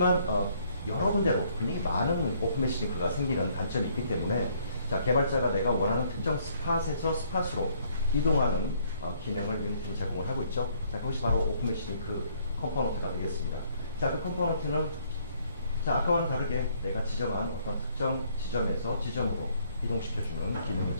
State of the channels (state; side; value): inverted; both; correlation -0.66